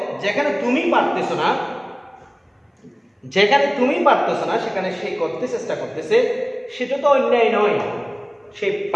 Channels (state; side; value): identical; both; correlation 1.00